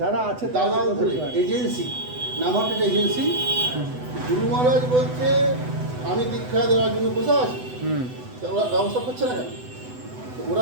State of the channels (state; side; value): late; left; 8.0 ms